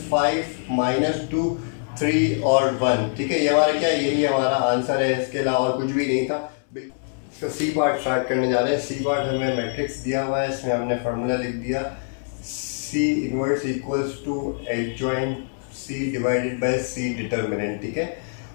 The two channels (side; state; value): right; silent; digital silence